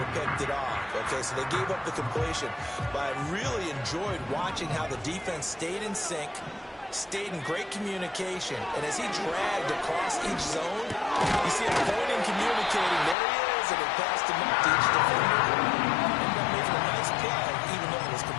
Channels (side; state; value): right; drops out; at 13.2 s